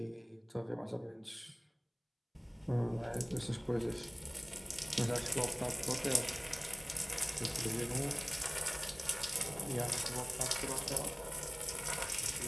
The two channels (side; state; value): both; identical; correlation 1.00